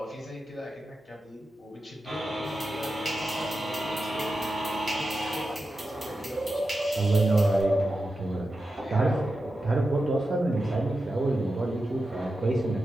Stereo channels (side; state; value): both; normal; correlation 0.90